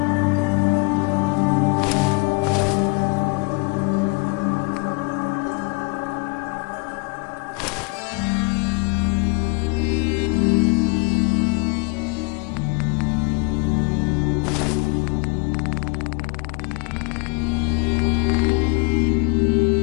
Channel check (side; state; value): right; quieter; 28.6 dB